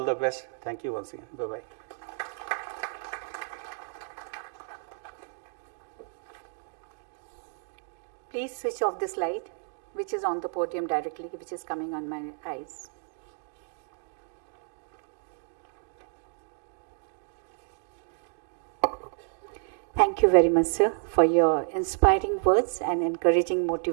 the best. Thank you once again. Bye-bye. Please switch off this light, which is on the podium directly, which is coming on my eyes. Thank you very much, sir, for your inspiring words and encouraging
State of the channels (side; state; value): left; silent; 58 dB below the other